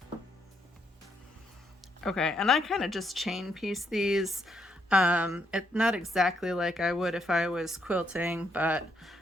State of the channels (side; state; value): both; normal; correlation 0.75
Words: Okay, and I kind of just chain piece these. It's not exactly like I would if I was quilting, but